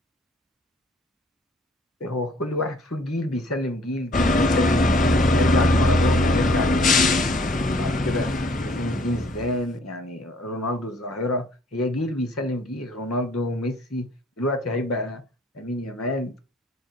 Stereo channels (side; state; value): both; normal; correlation 0.59